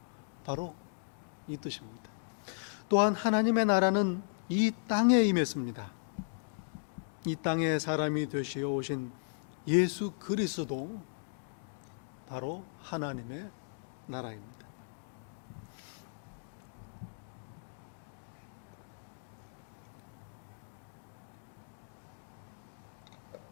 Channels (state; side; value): silent; right; digital silence